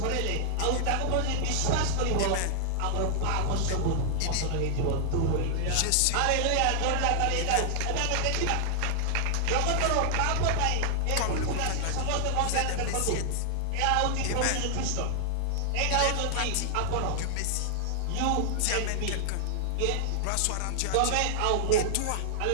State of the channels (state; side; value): different; both; correlation 0.00